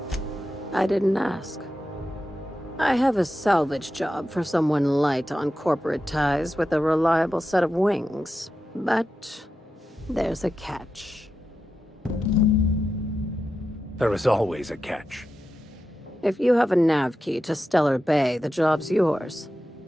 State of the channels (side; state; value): both; normal; correlation 0.90